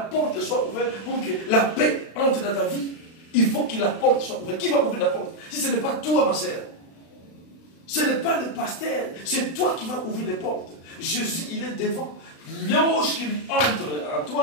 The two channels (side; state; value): right; late; 36 ms